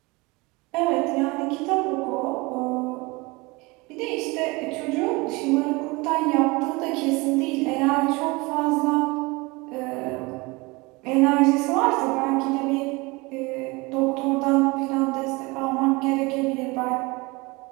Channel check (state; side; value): quieter; left; 24.9 dB